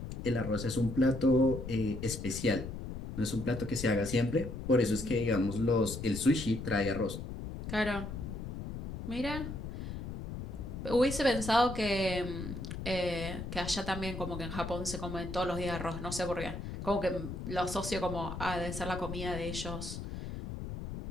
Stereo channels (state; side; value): noise; left; rumble, 7 dB below the sound